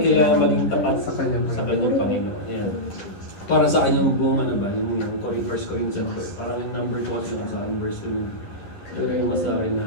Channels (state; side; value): late; right; 11 ms